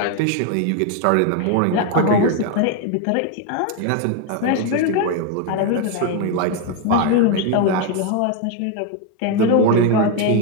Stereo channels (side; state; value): both; different; correlation 0.01